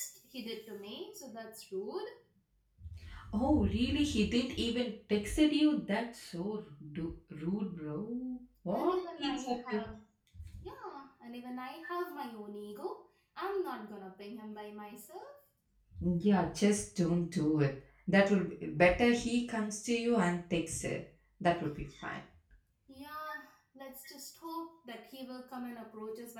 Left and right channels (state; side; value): identical; both; correlation 1.00